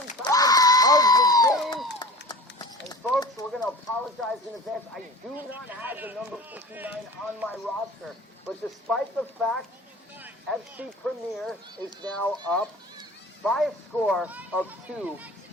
time of the game. And folks, we're going to apologize in advance. I do not have the number 59 on my roster. But despite the fact FC Premier is now up by a score of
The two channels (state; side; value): normal; both; correlation 0.38